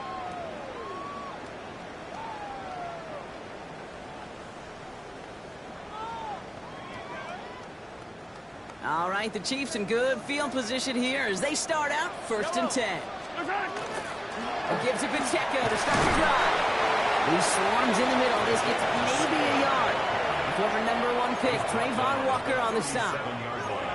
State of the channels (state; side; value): identical; both; correlation 1.00